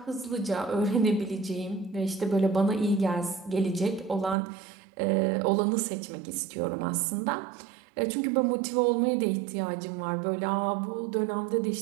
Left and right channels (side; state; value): left; drops out; at 4.4 s